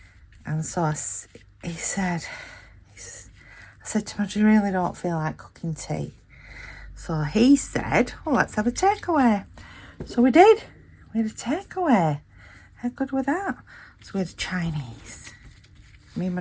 And so he said, I said to him, I really don't feel like cooking tea. So he said, well, let's have a takeaway. So we did. We had a takeaway. How good was that? So we had a Chinese. Me and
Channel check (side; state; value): both; identical; correlation 1.00